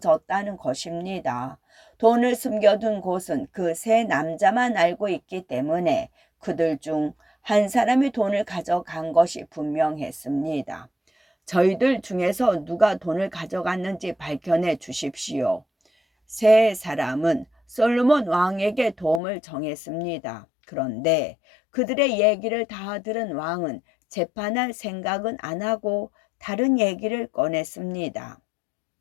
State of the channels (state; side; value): drops out; right; at 19.2 s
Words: 것입니다. 돈을 숨겨둔 곳은 그 3남자만 알고 있기 때문에 그들 중 한 사람이 돈을 가져간 것이 분명했습니다. 저희들 중에서 누가 돈을 가져갔는지 밝혀내 주십시오. 3사람은 솔로몬 왕에게 도움을 정했습니다. 그런데 그들의 얘기를 다 들은 왕은 재판할 생각은 안 하고 다른 얘기를 꺼냈습니다.